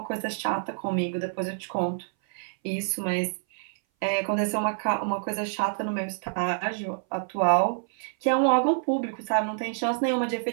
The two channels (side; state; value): left; silent; 58 dB below the other